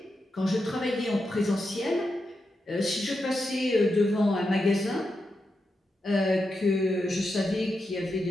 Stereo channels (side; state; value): both; normal; correlation 0.87